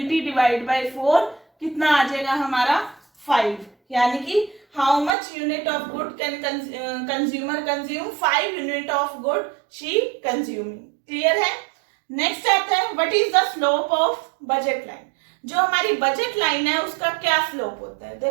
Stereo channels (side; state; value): left; drops out; at 5.1 s